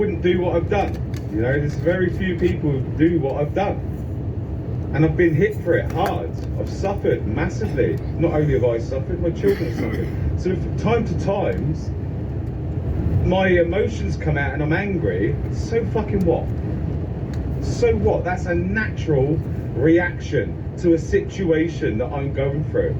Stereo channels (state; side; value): identical; both; correlation 1.00